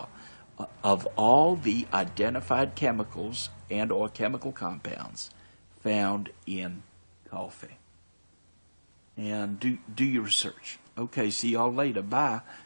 of all the identified chemicals and or chemical compounds found in coffee. And do your research. Okay, see y'all later. Bye.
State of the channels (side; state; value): both; inverted; correlation -1.00